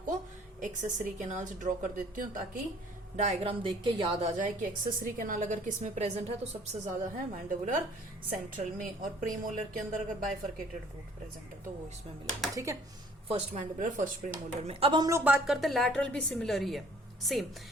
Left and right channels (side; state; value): both; normal; correlation 0.56